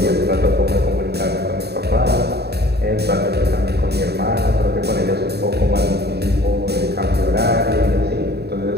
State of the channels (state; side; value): late; left; 0.48 ms